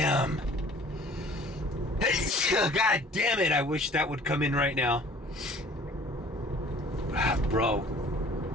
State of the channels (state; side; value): normal; both; correlation 0.51